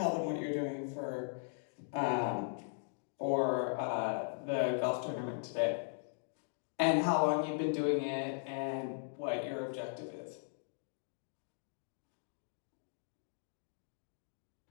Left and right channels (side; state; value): right; silent; digital silence